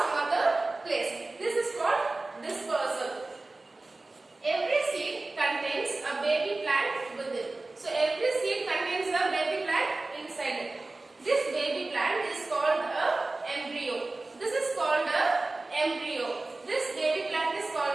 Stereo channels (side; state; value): left; quieter; 3.2 dB